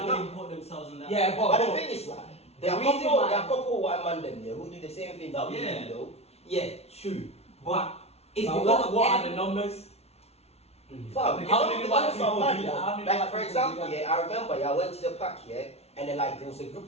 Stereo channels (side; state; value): right; late; 0.31 ms